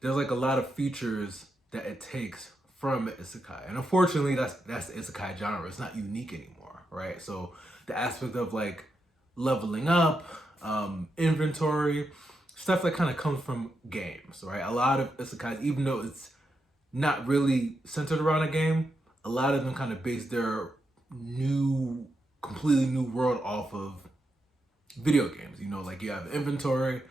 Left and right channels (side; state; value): both; normal; correlation 0.85